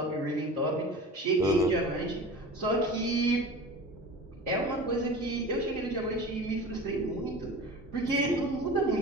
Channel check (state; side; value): normal; both; correlation 0.35